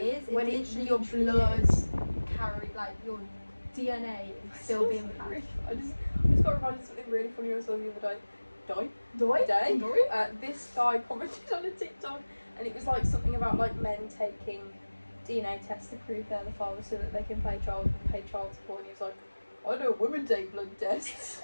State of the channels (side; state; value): both; inverted; correlation -1.00